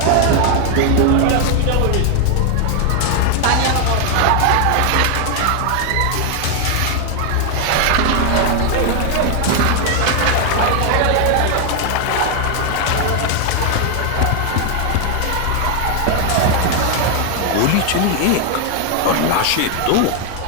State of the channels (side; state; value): both; different; correlation 0.00